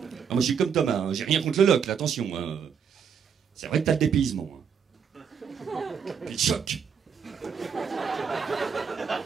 moi, je suis comme Thomas, hein. J'ai rien contre le Locle, attention. Hein. C'est vrai que t'as le dépaysement. Hein. Puis le choc.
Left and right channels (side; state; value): left; quieter; 7.0 dB